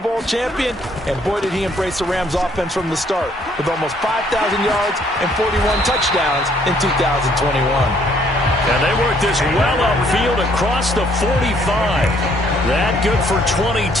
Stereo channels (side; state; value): both; normal; correlation 0.65